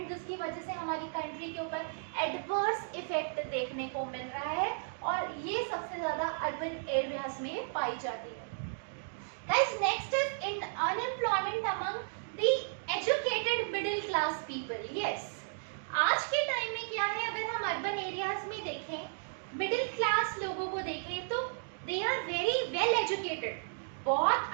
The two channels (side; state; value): left; silent; digital silence